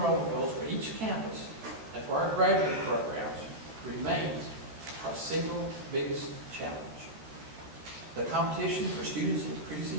goals for each campus and for our graduate programs remains our single biggest challenge. The competition for students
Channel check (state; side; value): late; left; 14 ms